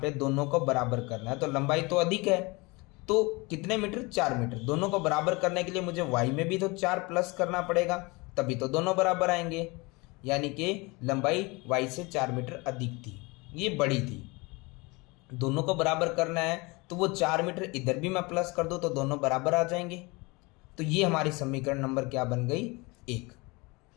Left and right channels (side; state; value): right; quieter; 25.7 dB